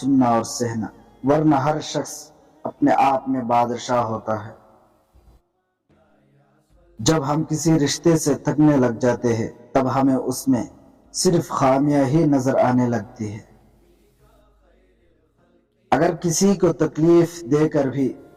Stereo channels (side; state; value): both; identical; correlation 1.00